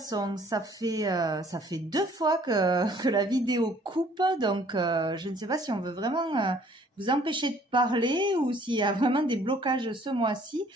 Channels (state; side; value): normal; both; correlation 0.58